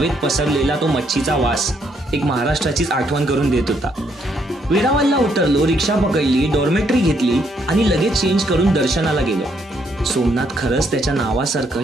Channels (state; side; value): normal; both; correlation 0.72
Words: पसरलेला तो मच्छीचा वास एक महाराष्ट्राचीच आठवण करून देत होता। वेरावळला उतरलो, रिक्षा पकडली, डॉर्मेटरी घेतली आणि लगेच चेंज करून दर्शनाला गेलो। सोमनाथ खरंच त्याच्या नावासारखं